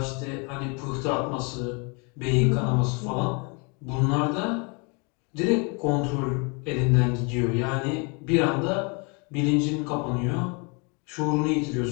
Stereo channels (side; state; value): right; quieter; 33.1 dB